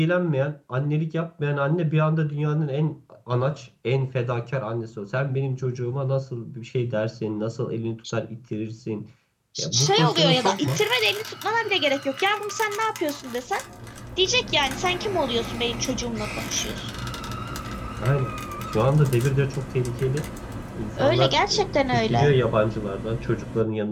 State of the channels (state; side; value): identical; both; correlation 1.00